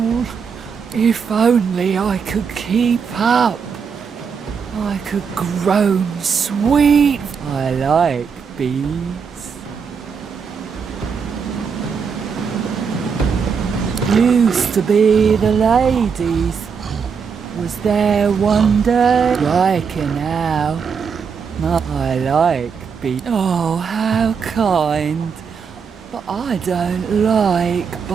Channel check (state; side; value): quieter; left; 6.2 dB